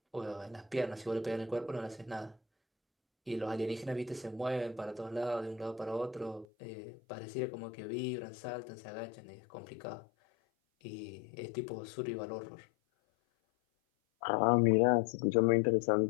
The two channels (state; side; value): drops out; right; at 6.5 s